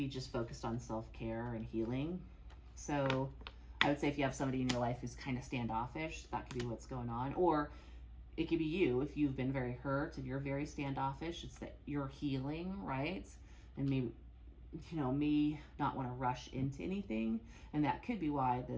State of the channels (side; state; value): both; identical; correlation 1.00